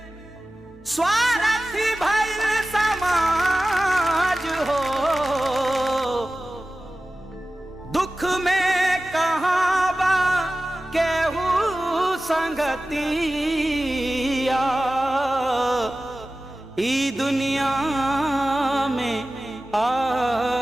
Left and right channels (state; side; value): normal; both; correlation 0.95